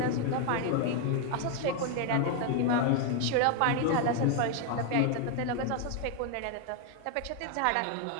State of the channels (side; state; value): both; different; correlation 0.00